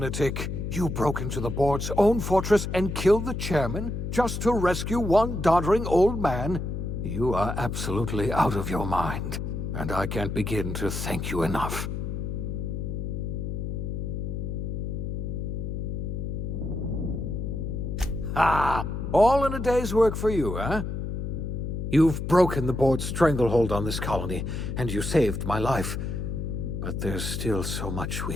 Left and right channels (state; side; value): noise; left; hum, 4 dB below the sound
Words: You broke into the board's own fortress and killed the chairman just to rescue one doddering old man? You are absolutely out of your mind, and I can't begin to thank you enough. Ah, all in a day's work for you, huh? You've broken the board's stranglehold on this colony, and you saved my life. But there's still so much we